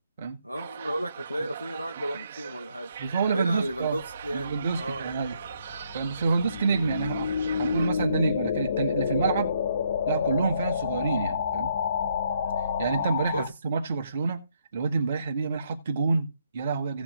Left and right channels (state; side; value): inverted; both; correlation -0.72